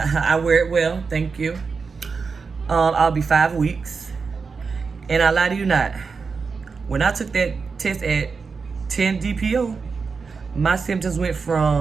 wear it well, thank you. I'll be 5 weeks. And I lie to you not, when I took that test at 10 DPO, my symptoms went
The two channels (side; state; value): left; quieter; 5.0 dB